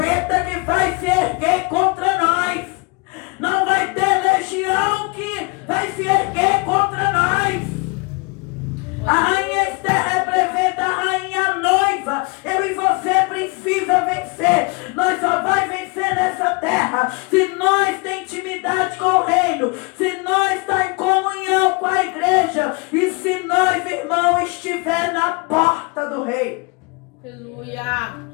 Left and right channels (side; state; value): right; quieter; 29.5 dB